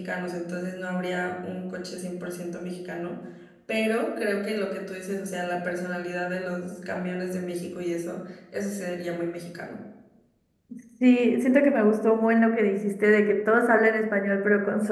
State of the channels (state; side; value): identical; both; correlation 1.00